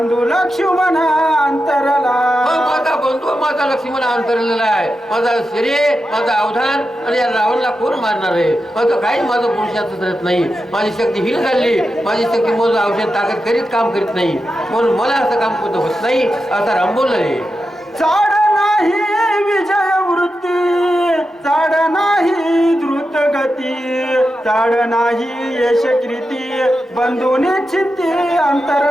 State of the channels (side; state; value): both; normal; correlation 0.89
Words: लक्ष्मण अंतरला. माझा बंधू माझा लक्ष्मण अंतरलेला आहे. माझा शरीर माझा अवधान आणि या रावणला कोण मारणार आहे. माझं काही माझं पुरुषाचं करत नाही. माझी शक्ती हीन झाली. माझी शक्ती माझं औषध ताकद करीत काम करीत नाही म्हणून मला असं काम कोणतं होत नाही असा राम बोलले. चाड नाही विजय वृत्ती चाड नाही द्रुत गती चाड नाही यश कृती बंधू निश्चिती